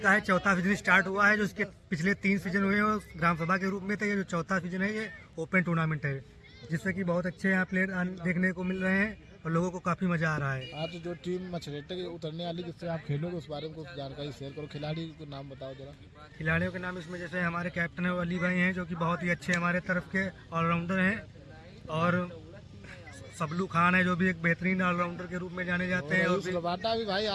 का है चौथा सीजन स्टार्ट हुआ है। जो इसके पिछले 3 सीजन हुए हैं ग्राम सभा के रूप में थे। ये जो चौथा सीजन है ये ओपन टूर्नामेंट है, जिससे कि बहुत अच्छे यहाँ प्लेयर देखने को मिल रहे हैं और लोगों को काफी मजा आ रहा है। आज जो टीम मछरेटे के उतरने वाली जिससे आप खेलोगे उस बारे में कुछ जानकारी शेयर करो। खिलाड़ी को नाम बताओ जरा। खिलाड़ियों के नाम इसमें जैसे हमारे कैप्टन है अली भाई हैं, जो कि बहुत ही अच्छे हमारे तरफ के ऑलराउंडर हैं, और सबलू खान है जो भी एक बेहतरीन ऑलराउंडर के रूप में जाने जाते हैं। और रबाडा भी भाई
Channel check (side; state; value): both; identical; correlation 1.00